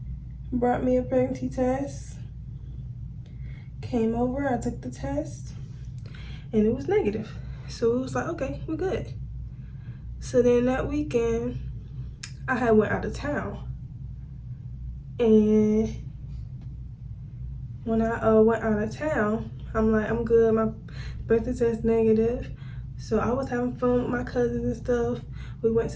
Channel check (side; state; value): both; identical; correlation 1.00